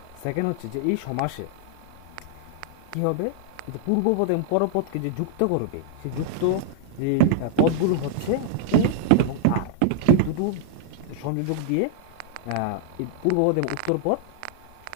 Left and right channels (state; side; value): different; both; correlation -0.01